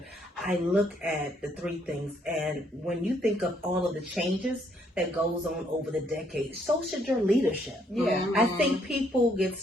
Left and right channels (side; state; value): both; normal; correlation 0.69